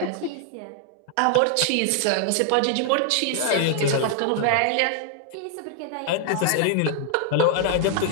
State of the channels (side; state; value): both; different; correlation 0.00